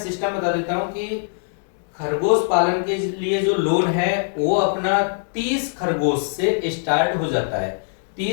बता देता हूँ कि खरगोश पालन के लिए जो लोन है वो अपना 30 खरगोश से स्टार्ट हो जाता है।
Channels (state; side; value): silent; right; 64 dB below the other